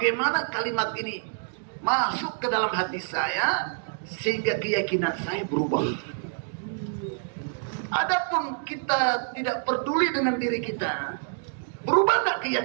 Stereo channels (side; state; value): left; silent; digital silence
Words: kalimat ini masuk ke dalam hati saya sehingga keyakinan saya berubah. Adapun kita tidak peduli dengan diri kita, berubah tidak